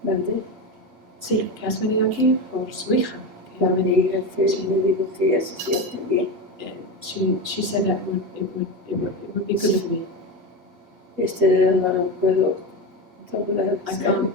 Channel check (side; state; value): left; late; 8.2 ms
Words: ¿Mandé? Sí, que has venido aquí por su hija. A mi hija que me dijo que ella se siente bien. She said that it would be good for me. Este dedo no lo puedo doblar. I can't